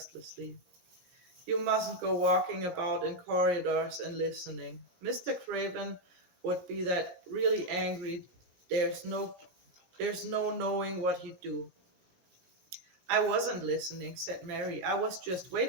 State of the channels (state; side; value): late; left; 17 ms